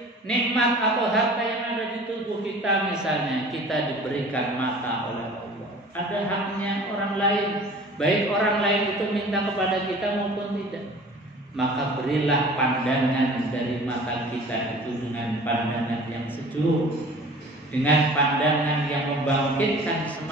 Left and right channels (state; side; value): normal; both; correlation 0.44